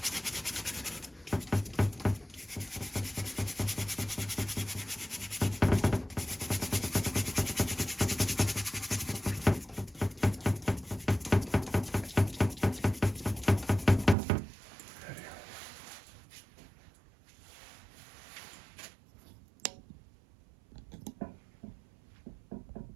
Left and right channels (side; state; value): left; drops out; at 14.2 s